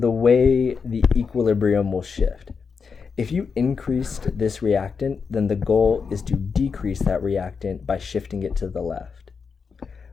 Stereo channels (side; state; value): right; quieter; 5.6 dB